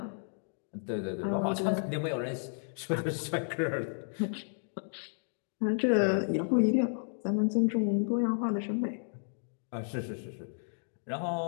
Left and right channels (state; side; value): silent; right; digital silence